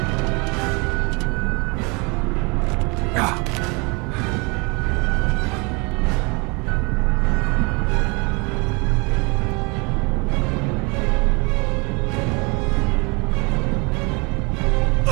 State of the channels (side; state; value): left; quieter; 29.4 dB